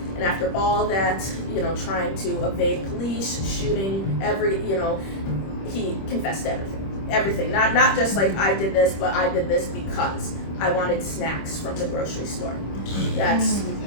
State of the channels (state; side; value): late; right; 26 ms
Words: And after all that, trying to evade police, shooting, he confessed to everything. Not just like I did this, but I did this because I wanted snacks from the grocery store.